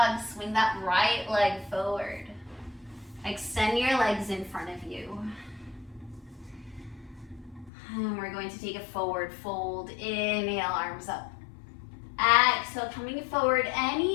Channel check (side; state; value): right; drops out; at 7.7 s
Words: swing that right leg forward. Extend your legs in front of you. And we're going to take a forward fold. Inhale, arms up. Exhale, coming forward